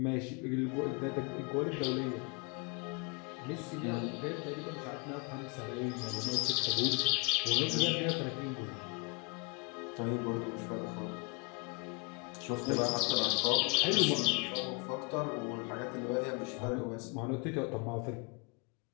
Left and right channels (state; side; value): quieter; right; 30.1 dB